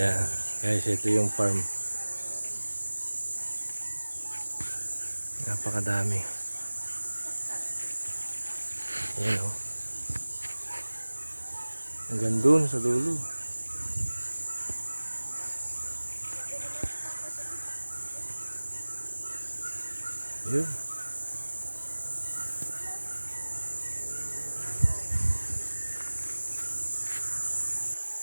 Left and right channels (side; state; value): both; inverted; correlation -1.00